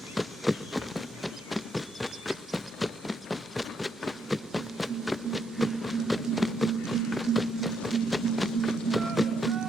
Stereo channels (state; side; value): normal; both; correlation 0.76